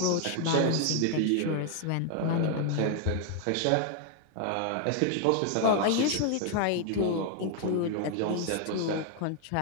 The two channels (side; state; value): both; different; correlation 0.00